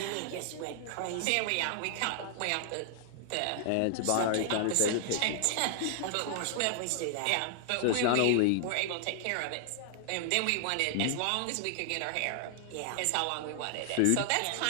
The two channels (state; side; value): different; both; correlation 0.00